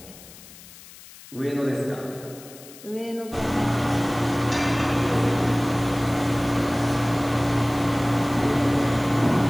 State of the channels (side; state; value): left; noise; hiss, 19 dB below the sound